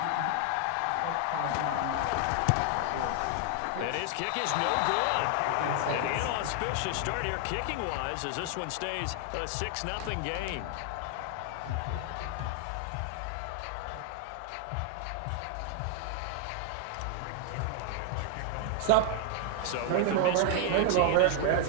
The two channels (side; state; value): both; different; correlation 0.00